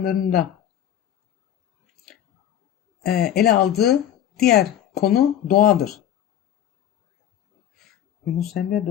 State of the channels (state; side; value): quieter; right; 10.6 dB